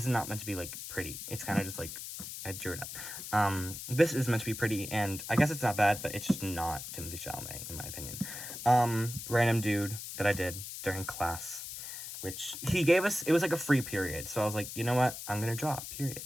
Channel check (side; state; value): left; noise; hiss, 9 dB below the sound